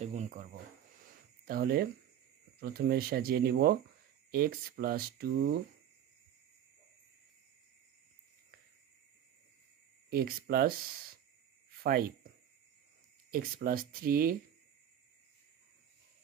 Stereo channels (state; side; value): quieter; left; 10.3 dB